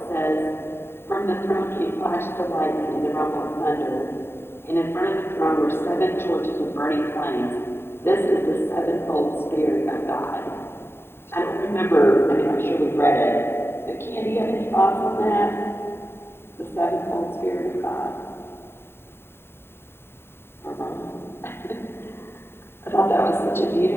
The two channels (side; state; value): right; late; 0.11 ms